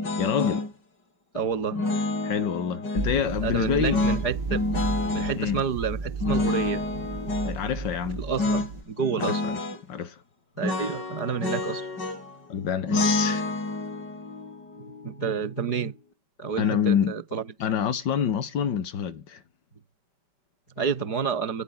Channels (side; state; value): right; late; 5.1 ms